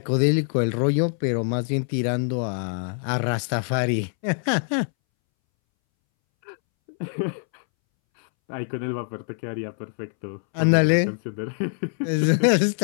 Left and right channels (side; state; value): right; silent; 62 dB below the other